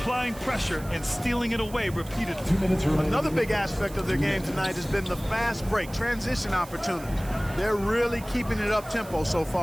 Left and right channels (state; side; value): noise; right; hiss, 18 dB below the sound